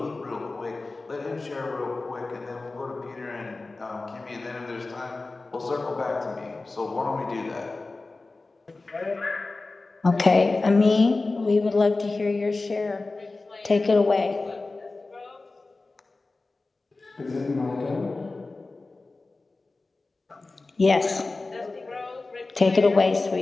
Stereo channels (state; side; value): quieter; right; 3.4 dB